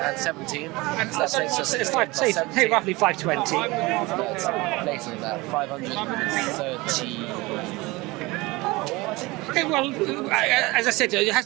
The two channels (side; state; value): left; quieter; 22.5 dB